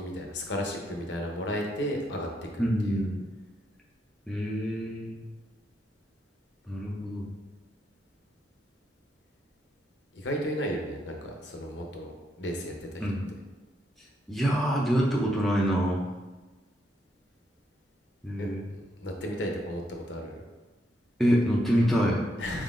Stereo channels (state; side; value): normal; both; correlation 0.78